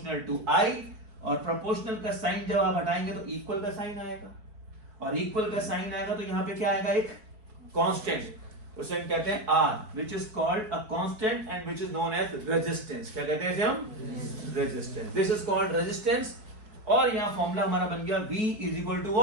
to I, और proportional का sign जब आप हटाएंगे तो equal का sign आएगा, और equal का साइन आएगा तो यहां पे क्या आएगा, एक कांस्टेंट, उसे हम कहते हैं R, which is called a constant and which is known as resistance। क्या कहते हैं इसे हम, resistance। This is called resistance। और यहां फॉर्मूला हमारा बन गया V is equal to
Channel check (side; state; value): left; late; 4.6 ms